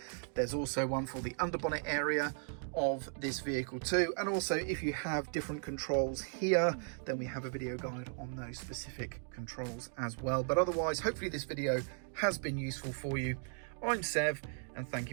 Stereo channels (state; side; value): silent; left; 53 dB below the other